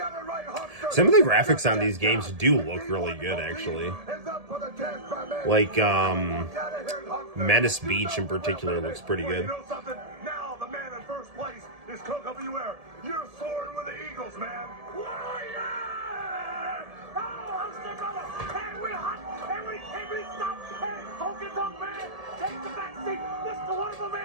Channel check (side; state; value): left; late; 1.7 ms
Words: Some of the graphics on these games do look really good, actually. Like, Menace Beach in particular looks pretty good. You know something? Now the man in first place is Coco Beware. You're soaring with the Eagles, man. Warrior! Oh, HULKSTER brother! And we're hot! And we can't be stopped! Hey, Honky Tonk Man! Take the back seat! Mr. Wonderful